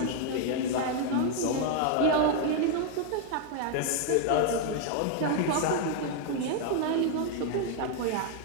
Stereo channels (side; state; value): both; different; correlation 0.00